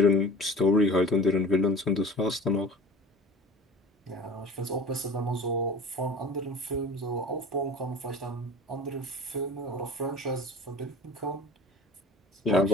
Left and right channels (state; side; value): normal; both; correlation 0.40